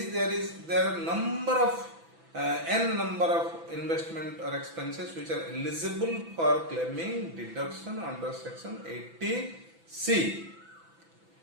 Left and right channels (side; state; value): left; late; 6.0 ms